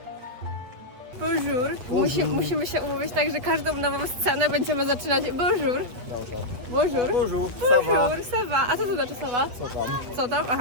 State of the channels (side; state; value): left; late; 8.2 ms